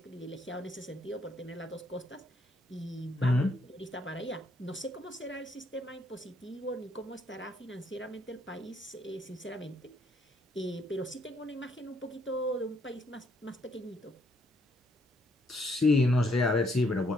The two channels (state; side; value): normal; both; correlation 0.71